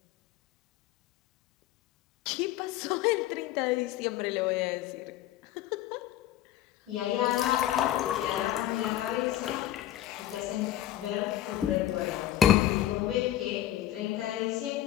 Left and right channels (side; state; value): right; quieter; 12.8 dB